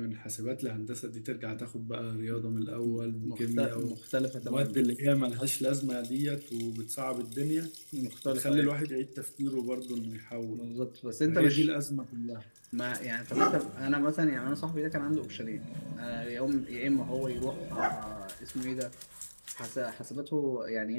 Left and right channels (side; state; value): both; inverted; correlation -1.00